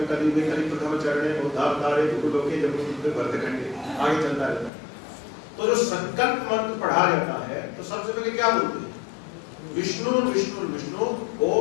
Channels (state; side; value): drops out; right; at 4.7 s